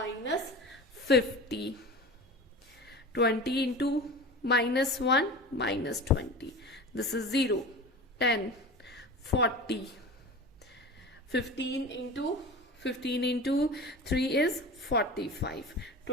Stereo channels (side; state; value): both; normal; correlation 0.33